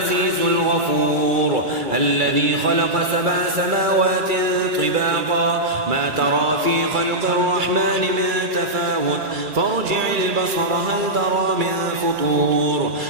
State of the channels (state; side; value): late; left; 2.3 ms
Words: الغفور، الذي خلق 7 سماوات طباقا ما ترى في خلق الرحمن من تفاوت، فارجع البصر هل ترى من فطور،